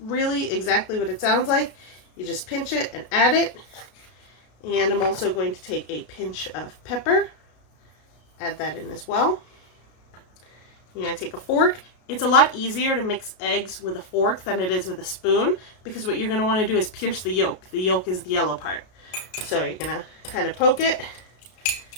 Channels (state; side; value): late; right; 32 ms